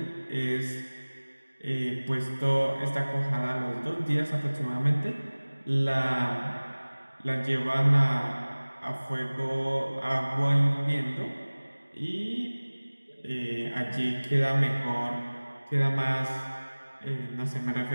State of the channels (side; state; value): both; inverted; correlation -1.00